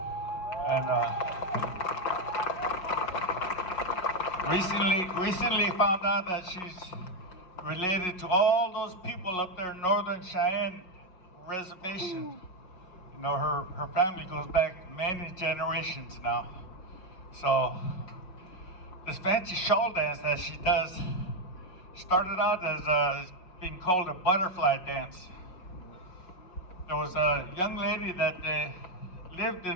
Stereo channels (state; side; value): late; right; 5.5 ms